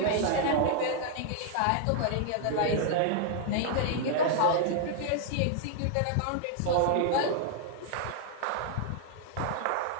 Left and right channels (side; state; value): both; different; correlation -0.01